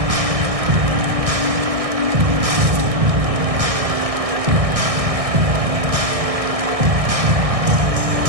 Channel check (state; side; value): late; left; 1.6 ms